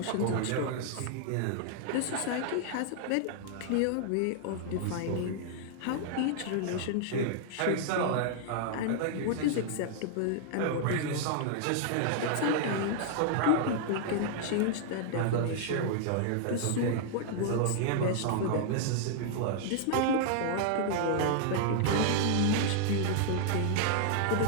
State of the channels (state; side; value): different; both; correlation -0.01